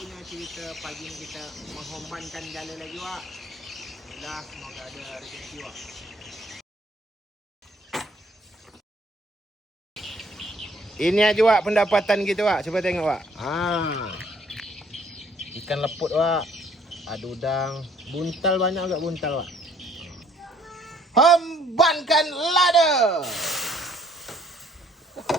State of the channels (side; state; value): both; normal; correlation 0.61